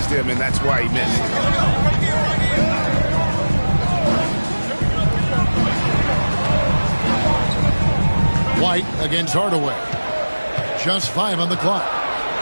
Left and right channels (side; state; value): both; inverted; correlation -1.00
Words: him, and that's why he missed. White against Hardaway. Just 5 on the clock.